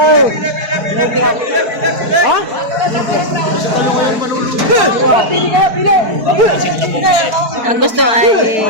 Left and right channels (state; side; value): late; left; 4.6 ms